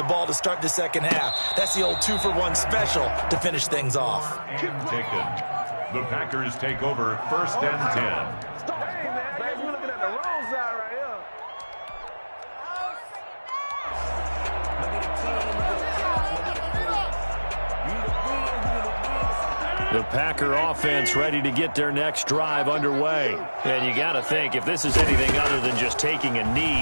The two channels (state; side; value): inverted; both; correlation -1.00